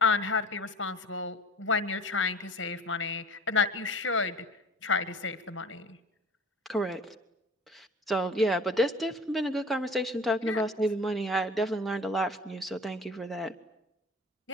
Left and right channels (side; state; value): both; normal; correlation 0.42